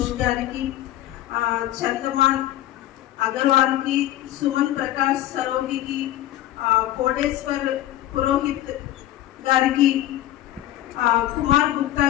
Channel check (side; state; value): right; quieter; 13.9 dB